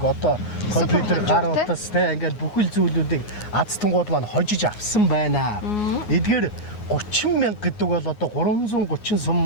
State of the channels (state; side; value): late; right; 9.5 ms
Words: одоо компьютер, гар утас те ингээд бүхэл зүйлүүдийг азтангууд маань хожиж авсан байна. Эдгээр 30,000 гэдэг бол одоо 330